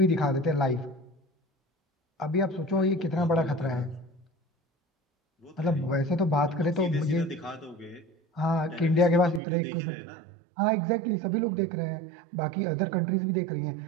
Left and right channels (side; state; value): left; drops out; at 9.4 s